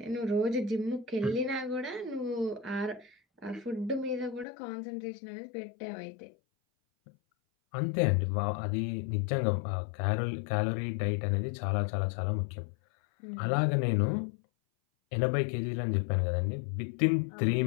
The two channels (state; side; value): drops out; right; at 4.5 s